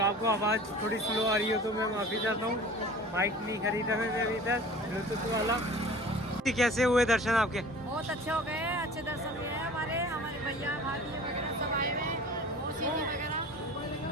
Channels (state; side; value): normal; both; correlation 0.42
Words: आपको आवाज़ थोड़ी स्लो आ रही हो तो मैं माफ़ी चाहता हूँ, माइक नहीं खरीदा मैंने अभी तक ब्लूटूथ वाला। कैसे हुए दर्शन आपके? बहुत अच्छे हो गए, अच्छे दर्शन हुए हैं हमारे भैया भाभी वगैरह सब आए हुए हैं, मौसी जी वगैरह।